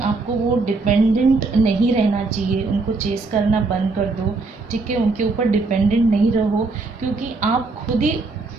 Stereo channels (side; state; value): left; quieter; 3.7 dB